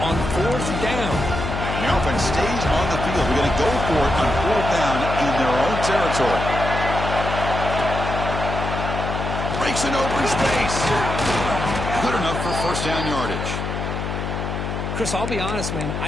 on fourth down? The offense stays on the field. They're going to go for it on fourth down in their own territory. Breaks an open space. Good enough for first down yardage. Chris, I'll be honest, man.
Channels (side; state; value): left; noise; hum, 4 dB below the sound